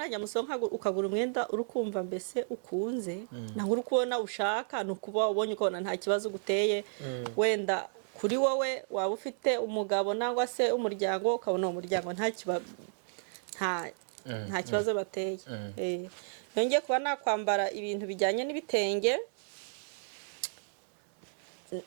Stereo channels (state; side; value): silent; left; digital silence